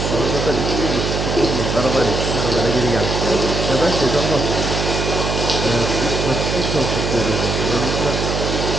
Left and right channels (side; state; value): right; noise; hum, 1 dB below the sound